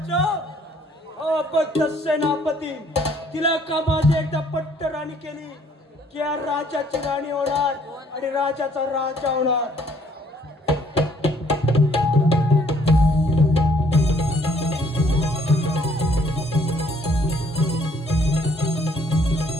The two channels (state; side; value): normal; both; correlation 0.63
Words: अबद्ध सेनापती. तिला का माझी एकदा पट्ट राणी केली की या राजाची राणी होणार आणि राजाचा राजा होणार.